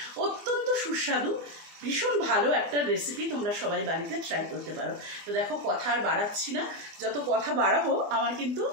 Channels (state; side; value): late; left; 24 ms